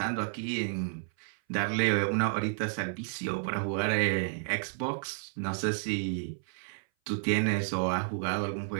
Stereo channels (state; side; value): silent; left; 57 dB below the other